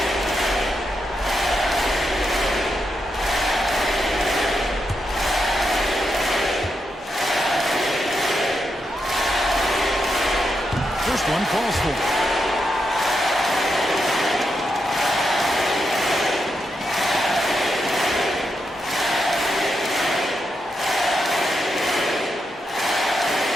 First one falls for.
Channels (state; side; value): normal; both; correlation 0.84